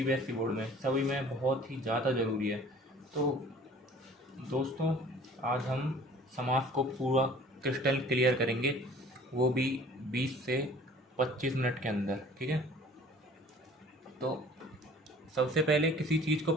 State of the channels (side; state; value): both; normal; correlation 0.49